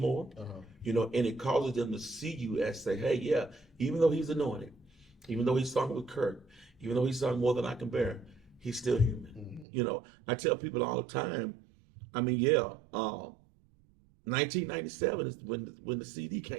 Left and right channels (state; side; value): drops out; left; at 9.7 s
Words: and it causes them to see you as say, hey, yeah, even though he's anointed, even though he sung with Kirk, even though he sung More Than I Can Bear, he's still human. I tell people all the time, 1997 is when the CD